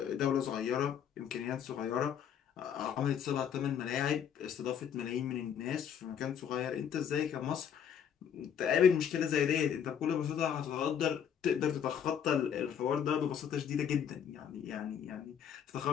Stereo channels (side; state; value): right; quieter; 8.4 dB